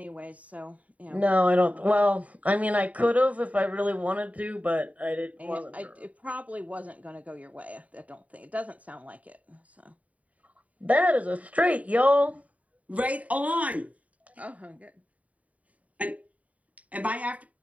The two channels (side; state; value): left; late; 0.069 ms